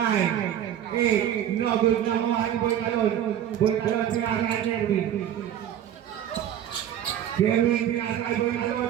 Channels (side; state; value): left; quieter; 10.5 dB